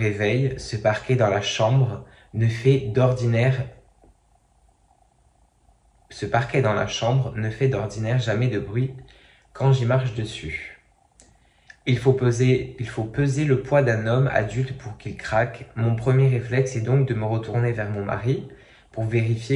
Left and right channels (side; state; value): both; identical; correlation 1.00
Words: Ce parquet dans la chambre ne fait d'ordinaire jamais de bruit quand j'y marche dessus. Il faut peser le poids d'un homme adulte pour qu'il craque. Mon premier réflexe est donc de me retourner vers mon mari pour